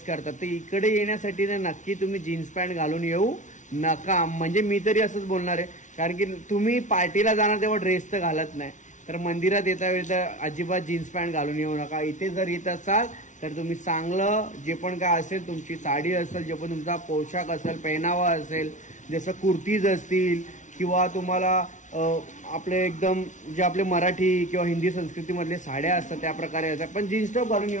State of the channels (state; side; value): late; right; 0.36 ms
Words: करता, तर इकडे येण्यासाठी ना नक्की तुम्ही जीन्स पॅन्ट घालून येऊ नका. म्हणजे मी तरी असंच बोलणार आहे, कारण की तुम्ही पार्टीला जाणार तेव्हा ड्रेस तर घालत नाही, तर मंदिरात येता वेळी तर अजिबात जीन्स पॅन्ट घालून येऊ नका. इथे जर येत असाल तर तुम्ही चांगलं जे पण काय असेल, तुमची साडी असेल, जे पण तुमचा पोशाख असेल, पेहनावा असेल, जसं कुर्तीज असतील किंवा तुम्हाला आपले एकदम जे आपले मराठी किंवा हिंदी संस्कृतीमधले साड्या असतात त्या प्रकारे असतात, पण जीन्स टॉप घालून